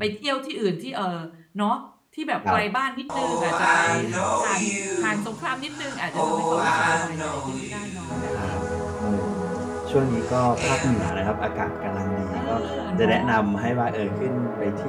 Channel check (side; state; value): both; identical; correlation 1.00